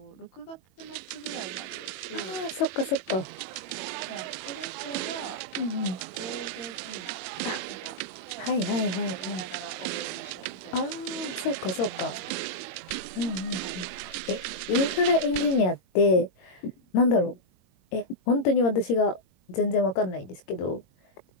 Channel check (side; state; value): right; late; 22 ms